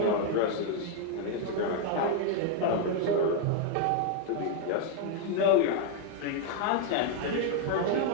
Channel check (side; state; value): both; different; correlation 0.00